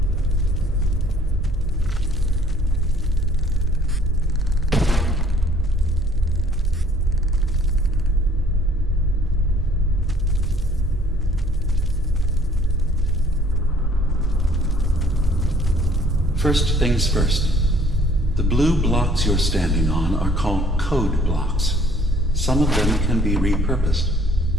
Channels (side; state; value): both; normal; correlation 0.59